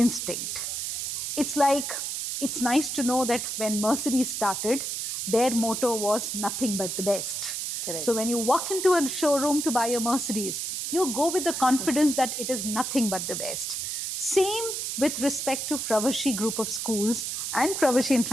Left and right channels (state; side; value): noise; right; hiss, 3 dB below the sound